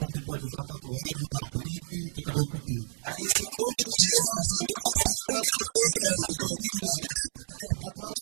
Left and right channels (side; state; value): left; silent; 58 dB below the other